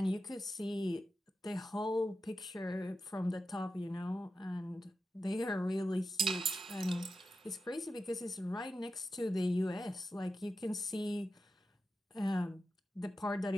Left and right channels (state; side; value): normal; both; correlation 0.91